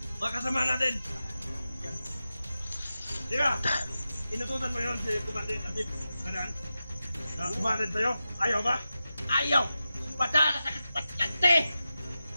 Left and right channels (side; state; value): both; inverted; correlation -0.93